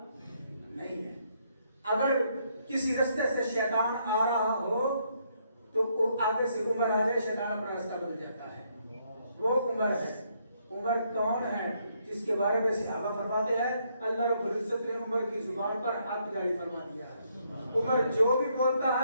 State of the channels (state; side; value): inverted; both; correlation -0.73